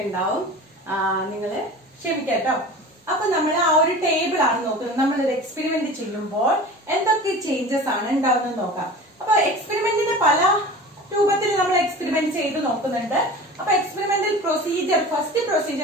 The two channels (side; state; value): both; normal; correlation 0.37